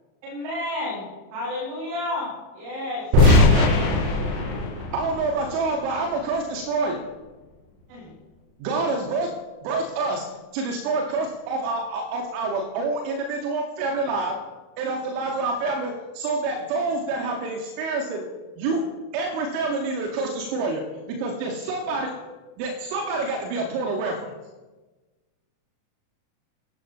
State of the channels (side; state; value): left; late; 38 ms